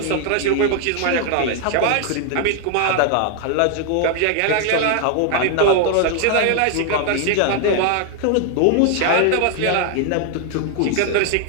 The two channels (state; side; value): different; both; correlation 0.00